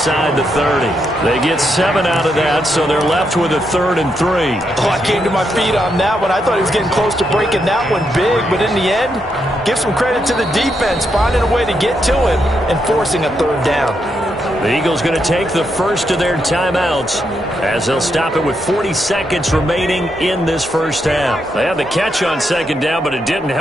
the 30. They get 7 out of that, so they're left with a 3rd and 3. Oh, I came to my feet on that one. I thought he was getting close to breaking that one big, but in the end, give some credit to the defense, finding a way to get to him and forcing a 3rd down. The Eagles going to take the first of their timeouts as they'll stop it with 40 seconds remaining in this first half. They had the catch on 2nd down, but it didn't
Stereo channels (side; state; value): both; normal; correlation 0.81